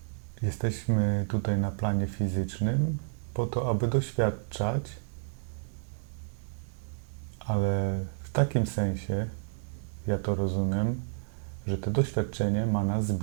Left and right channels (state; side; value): silent; left; digital silence